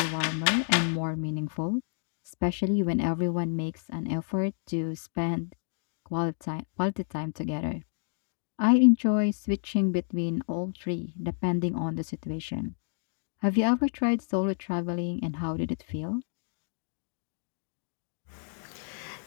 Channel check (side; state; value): right; silent; 58 dB below the other